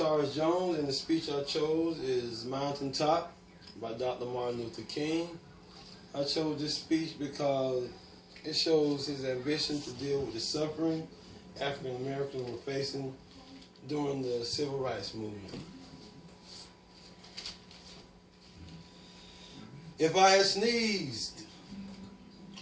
Jones, and the speech I chose is Mountaintop by Dr. Martin Luther King. I chose this speech because it shows his ambition to deal with the suffering African Americans were facing during the Civil Rights Movement. If I had sneezed,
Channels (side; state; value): both; identical; correlation 1.00